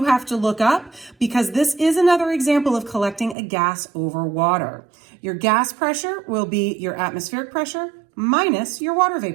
have to look up because this is another example of collecting a gas over water. Your gas pressure will be your atmospheric pressure minus your water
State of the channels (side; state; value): left; drops out; at 3.4 s